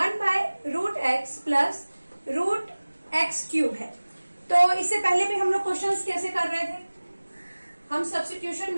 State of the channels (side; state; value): both; inverted; correlation -1.00